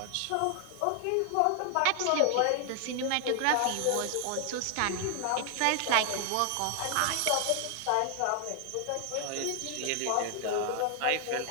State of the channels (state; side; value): different; both; correlation 0.00